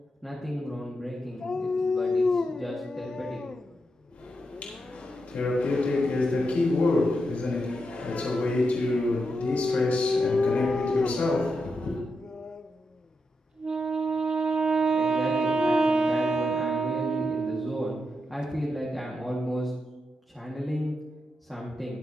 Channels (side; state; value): both; normal; correlation 0.85